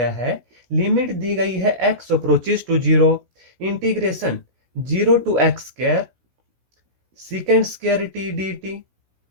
है? लिमिट दी गई है x approaches to zero, integration zero to x square second square t d t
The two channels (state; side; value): late; left; 16 ms